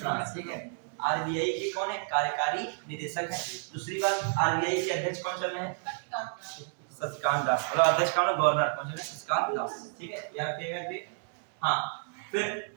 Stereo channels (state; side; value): silent; left; 57 dB below the other